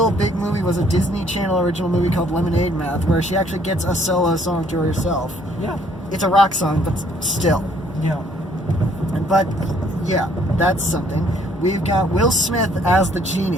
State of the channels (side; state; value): both; normal; correlation 0.62